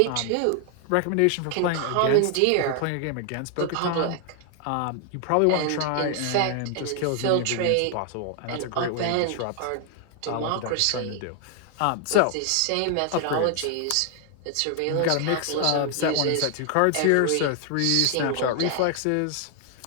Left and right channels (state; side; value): different; both; correlation 0.00